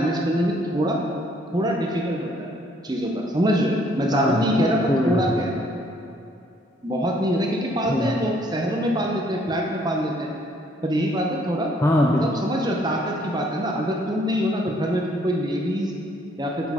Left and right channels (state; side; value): normal; both; correlation 0.64